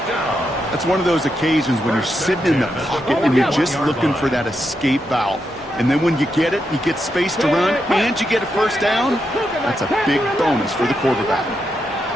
That's one of those occasions when you're sitting in the pocket and you're just looking for that escape valve. And then when you get it, you get space to run, and you get a first down. That's a big bonus for the quarterback.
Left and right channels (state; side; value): normal; both; correlation 0.84